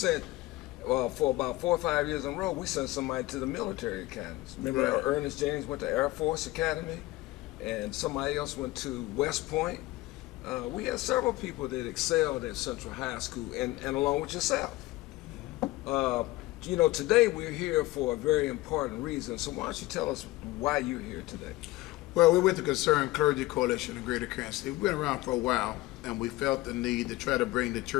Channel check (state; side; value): quieter; right; 19.1 dB